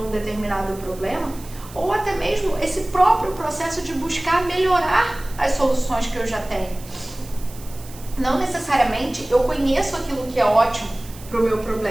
um determinado problema, ou até mesmo esse próprio processo de buscar melhorar as soluções que eu já tenho. Não necessariamente eu conheço aquilo que é ótimo para o meu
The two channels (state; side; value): noise; right; hiss, 19 dB below the sound